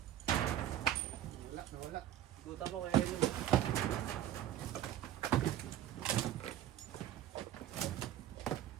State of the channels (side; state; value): left; quieter; 12.2 dB